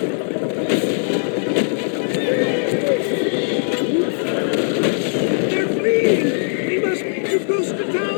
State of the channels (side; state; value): right; silent; digital silence